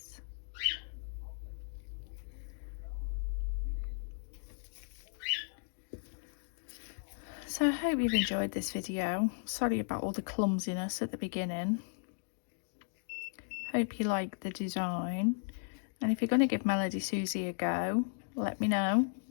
So I hope you've enjoyed this video. Sorry about all the clumsiness at the beginning. Hope you like the design. And if you're going to give Melodysusie a go, let me know,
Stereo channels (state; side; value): silent; right; digital silence